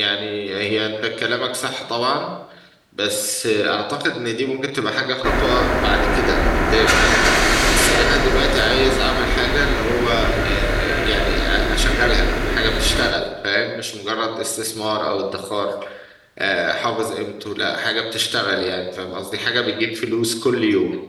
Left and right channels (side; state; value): both; identical; correlation 1.00